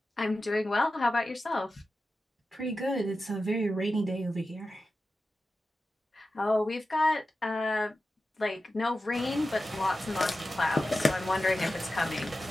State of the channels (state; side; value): normal; both; correlation 0.93